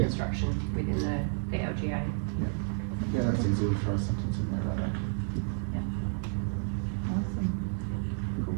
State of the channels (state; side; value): silent; left; digital silence